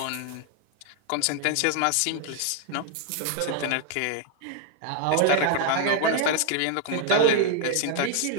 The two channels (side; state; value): both; different; correlation 0.00